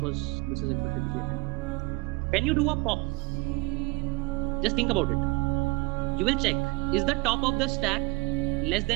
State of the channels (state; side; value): quieter; left; 24.6 dB